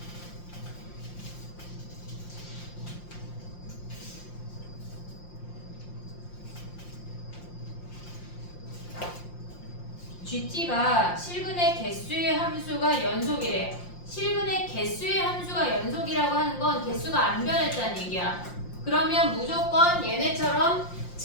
GT가 실근의 개수의 함수가 연속이래. 실근의 개수의 함수가 연속이라고 하는 건 개수가 안 변했다는 얘기야. 그러면 무조건 얘네처럼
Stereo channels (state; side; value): late; right; 5.7 ms